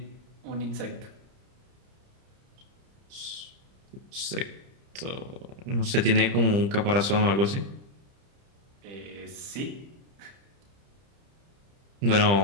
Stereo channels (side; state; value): left; late; 30 ms